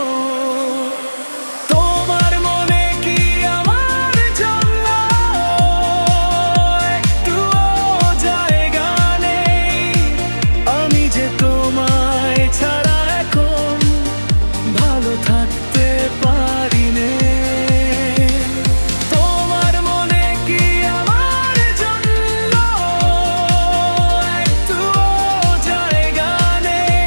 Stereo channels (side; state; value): both; inverted; correlation -1.00